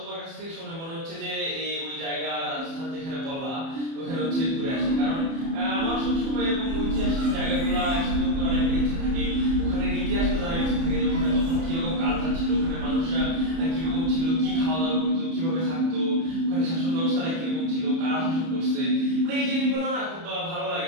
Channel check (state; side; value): late; left; 30 ms